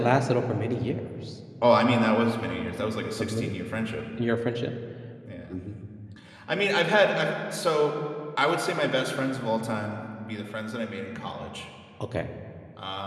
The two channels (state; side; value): identical; both; correlation 1.00